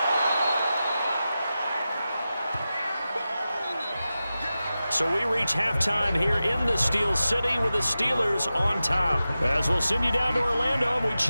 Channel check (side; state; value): both; inverted; correlation -0.93